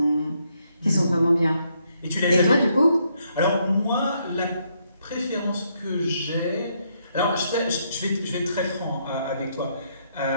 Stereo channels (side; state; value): both; inverted; correlation -0.74